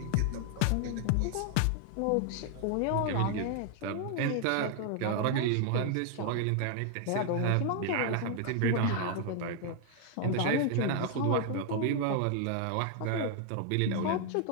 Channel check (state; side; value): different; both; correlation 0.00